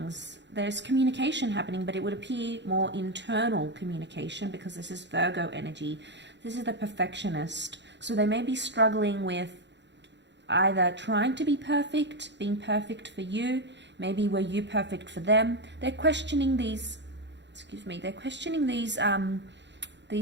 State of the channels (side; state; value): left; late; 0.52 ms